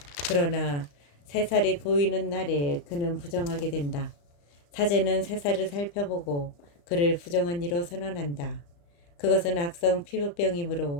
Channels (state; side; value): late; right; 35 ms